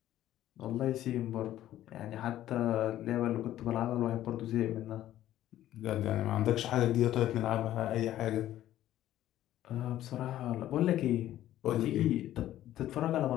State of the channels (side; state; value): right; quieter; 13.1 dB